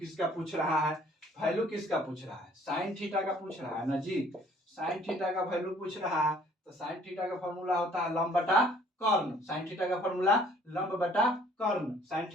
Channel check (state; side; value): normal; both; correlation 0.58